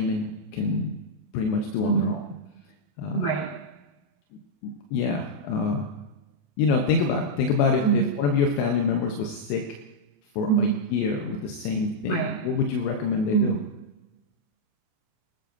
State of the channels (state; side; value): late; right; 28 ms